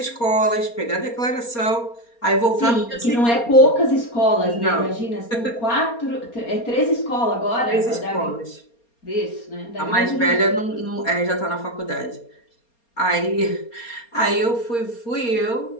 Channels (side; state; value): right; late; 4.3 ms